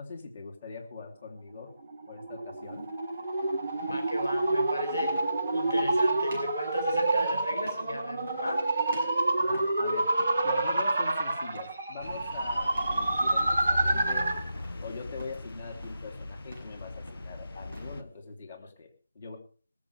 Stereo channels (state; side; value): inverted; both; correlation -0.85